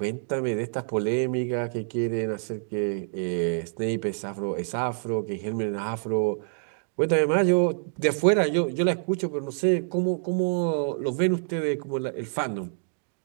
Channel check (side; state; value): left; silent; digital silence